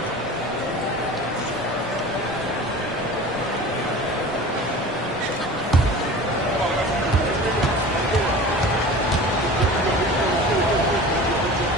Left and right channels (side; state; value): both; normal; correlation 0.38